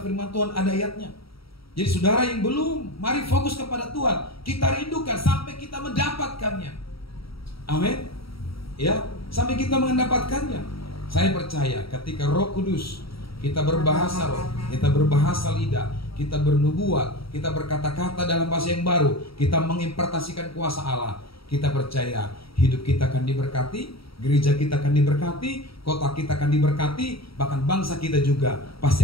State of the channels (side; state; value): right; late; 0.75 ms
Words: firman Tuhan, ada ayatnya. Jadi saudara yang belum, mari fokus kepada Tuhan. Kita rindukan sampai kita mendapatkannya. Amin. Ya, sampai kita mendapatkannya. Saya percaya ketika Roh Kudus, kita berbahasa roh, kita berbahasa lidah, kita bernubuat, kita berkata-kata dalam bahasa yang baru, kita mengimpartasikan kuasa Allah, kita percaya hidup kita akan diberkati, gereja kita akan diberkati, kota kita akan diberkati, bahkan bangsa kita juga